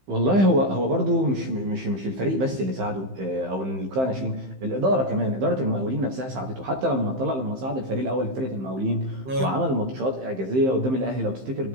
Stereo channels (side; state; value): left; late; 15 ms